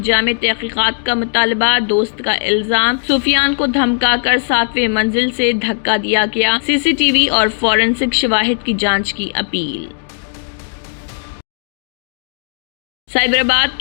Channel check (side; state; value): right; silent; 69 dB below the other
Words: جامع تحقیقات کا مطالبہ، دوست کا الزام، سفیان کو دھمکا کر 7ویں منزل سے دھکا دیا گیا، CCTV اور فورنسک شواہد کی جانچ کی اپیل۔ سائبرآباد